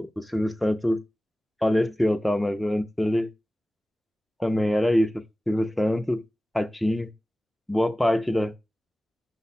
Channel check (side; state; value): both; normal; correlation 0.97